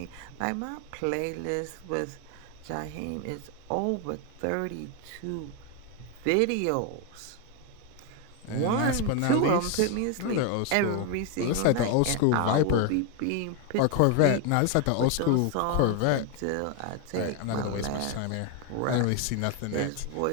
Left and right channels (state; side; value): different; both; correlation 0.01